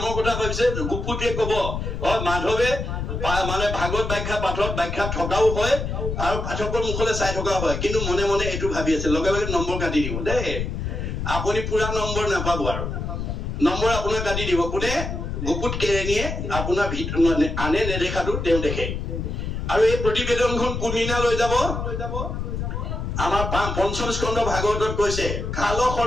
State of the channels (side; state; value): left; noise; rumble, 4 dB below the sound